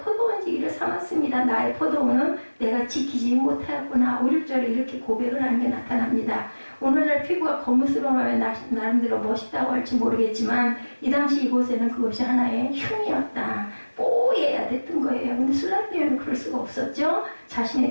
삼았습니다. 나의 포도원은 내가 지키지 못하였구나. 5, 6절에 이렇게 고백을 하는 게 나타납니다. 오늘날 피부가 거무스름하면 나름대로 멋있다고 할지 모르겠지만 이 당시 이곳에는 그것이 하나의 흉이었다. 뽀얘야 됐던 거예요. 근데 술람 여인은 그럴 수가 없었죠.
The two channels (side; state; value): both; inverted; correlation -1.00